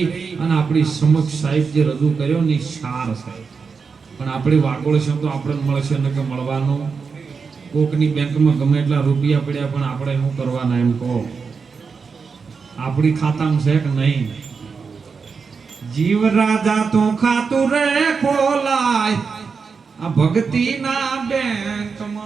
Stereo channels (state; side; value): quieter; left; 5.3 dB